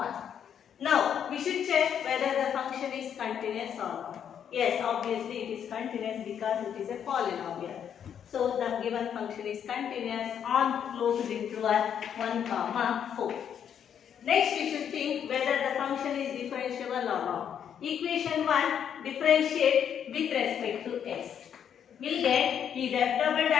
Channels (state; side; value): quieter; right; 8.6 dB